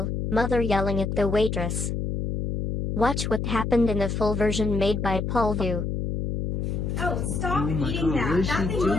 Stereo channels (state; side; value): noise; left; hum, 2 dB below the sound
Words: mother yelling at the waitress. Watch what happened in the full version made by Paul Vu. Oh, stop eating that. That thing